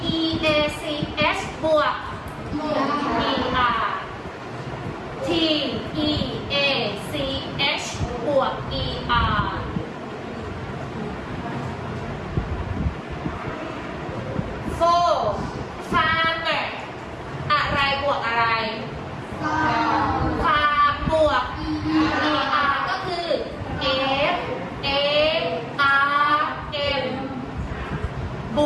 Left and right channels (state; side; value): identical; both; correlation 1.00